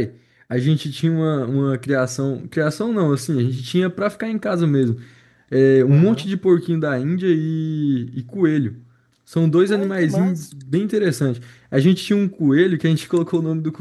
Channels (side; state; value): both; identical; correlation 1.00